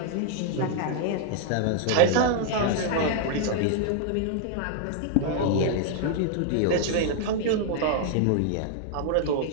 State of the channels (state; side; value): different; both; correlation 0.00